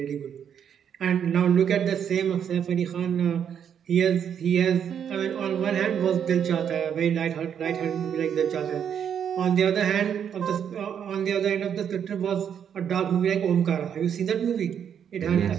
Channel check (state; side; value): quieter; left; 8.4 dB